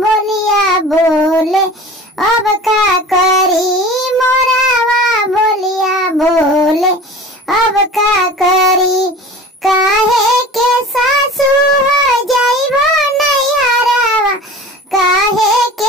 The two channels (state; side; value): normal; both; correlation 0.39